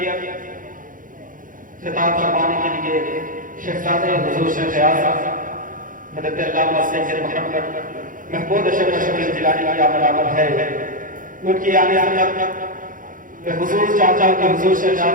خطاب فرمانے کے لیے شہزادہ حضور شیخ اعظم حضرت علامہ سید محمد محمود اشرف شکیل جیلانی کی آمد ہے۔ ان کی آنے میں حضور چاچا کے حضور شیخ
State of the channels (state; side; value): late; left; 0.39 ms